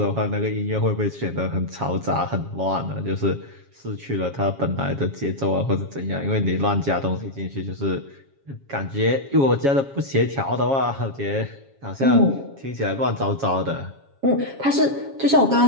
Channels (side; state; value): left; late; 7.3 ms